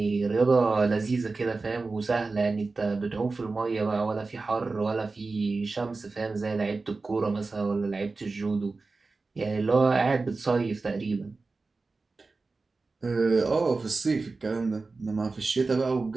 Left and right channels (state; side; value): quieter; left; 3.8 dB